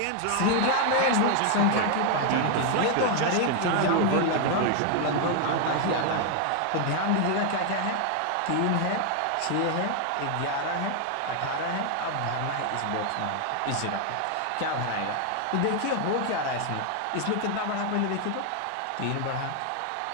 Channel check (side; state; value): both; different; correlation 0.00